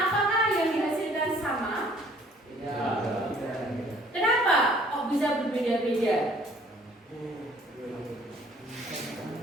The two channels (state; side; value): normal; both; correlation 0.57